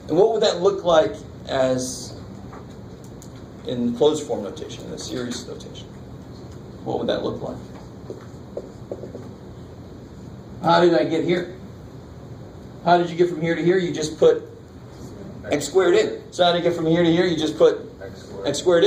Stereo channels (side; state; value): both; identical; correlation 1.00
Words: And what would that look like as in closed form notation, in a series notation? What would that look like? How did I get here? How did you get from here to here? You just put x squared in. So how did you get from here to here? You just put x squared